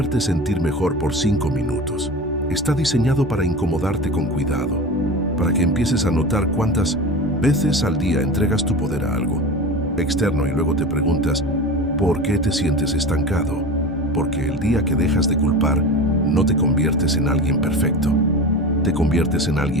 sentir mejor por 5 minutos. Está diseñado para incomodarte con cuidado, para que empieces a notar cuántas veces al día entregas tu poder a algo externo y luego te preguntas, ¿por qué te sientes estancado? Porque el día que dejas de culpar, no te conviertes en alguien perfecto, te conviertes en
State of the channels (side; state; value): both; normal; correlation 0.30